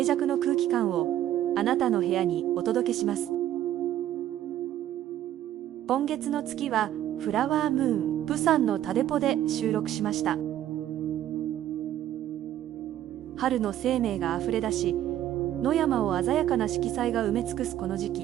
寂の空気感をあなたの部屋にお届けします。今月の月はフラワームーン、プサンのタデポで収録しました。春の生命があふれ出し、野山を鮮やかな色彩が埋め尽くすこの時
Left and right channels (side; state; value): left; quieter; 12.2 dB